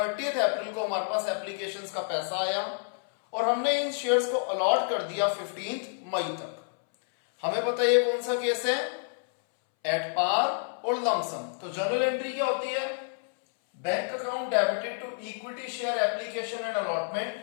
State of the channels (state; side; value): silent; right; 59 dB below the other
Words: अप्रैल को हमारे पास एप्लीकेशंस का पैसा आया और हमने इन शेयर्स को अलॉट कर दिया 15 मई तक। हमें पता है ये कौन सा केस है, एट पार और लमसम। तो जर्नल एंट्री क्या होती है, bank account debited to equity share application and